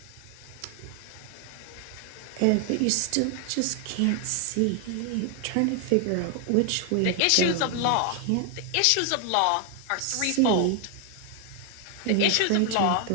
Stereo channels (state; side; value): different; both; correlation 0.00